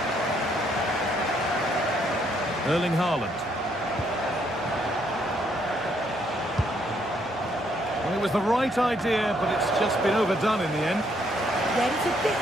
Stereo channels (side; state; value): left; noise; hum, 27 dB below the sound